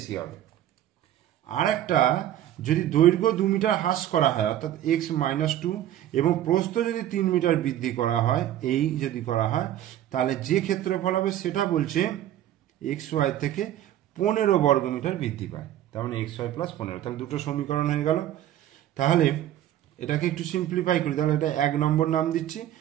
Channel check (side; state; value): left; quieter; 12.3 dB